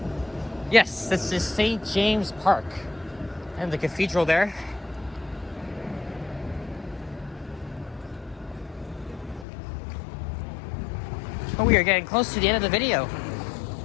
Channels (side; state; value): right; drops out; at 9.5 s